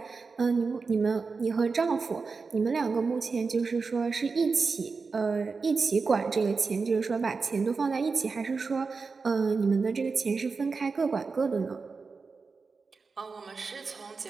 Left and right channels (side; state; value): left; quieter; 4.6 dB